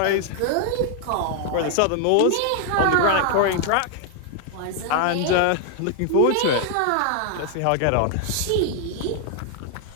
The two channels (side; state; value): both; different; correlation 0.00